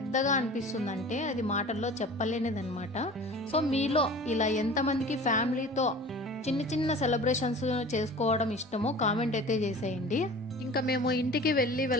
అనిపిస్తుందంటే అది మాటల్లో చెప్పలేనిదన్నమాట. సో మీలో ఇలా ఎంతమందికి ఫ్యామిలీతో చిన్న చిన్న సెలబ్రేషన్స్ చేసుకోవడం ఇష్టమో కామెంట్ అయితే చేసేయండి. ఇంకా మేము ఇంటికి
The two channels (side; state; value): both; normal; correlation 0.41